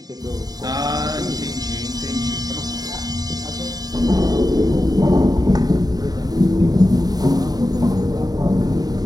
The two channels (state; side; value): late; left; 0.19 ms